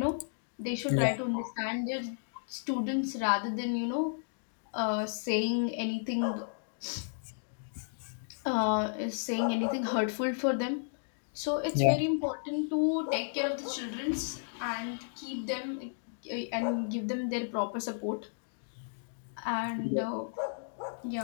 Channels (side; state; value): right; silent; digital silence